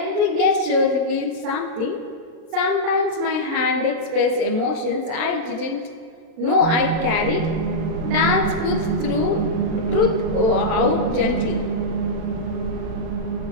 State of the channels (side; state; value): left; late; 36 ms